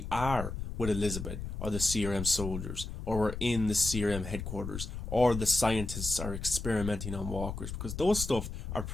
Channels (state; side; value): noise; left; rumble, 6 dB below the sound